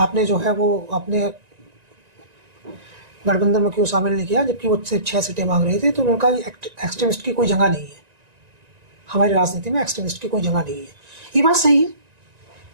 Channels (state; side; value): late; left; 1.9 ms